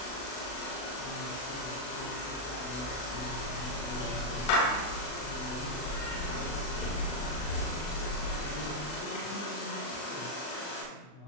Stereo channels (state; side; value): late; right; 40 ms